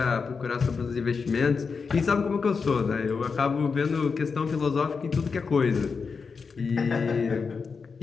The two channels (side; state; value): right; quieter; 5.2 dB